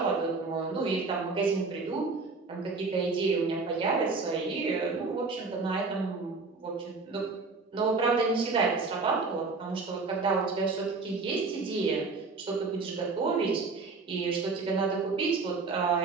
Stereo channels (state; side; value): quieter; left; 4.1 dB